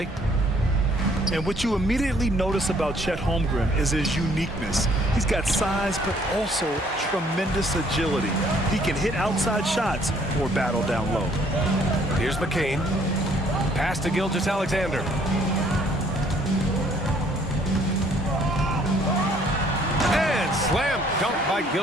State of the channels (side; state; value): both; normal; correlation 0.62